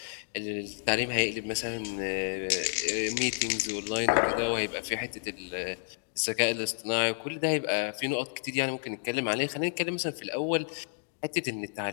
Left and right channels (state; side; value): silent; right; digital silence